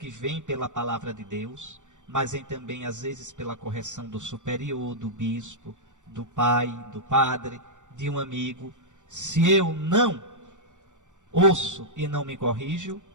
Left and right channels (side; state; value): left; late; 0.85 ms